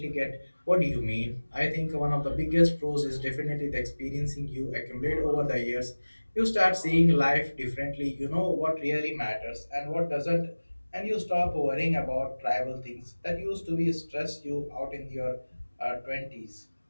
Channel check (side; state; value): both; inverted; correlation -1.00